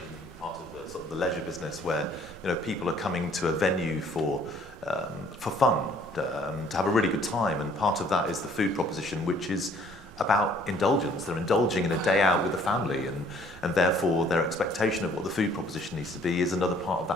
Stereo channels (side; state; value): both; normal; correlation 0.59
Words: in part of sort of the leisure business, where people are coming to a venue for fun, to have a really good time, and part of that is the food proposition, which is about indulgence. They're indulging in a day out with the family, and therefore their expectation of what the food proposition needs to be is another part of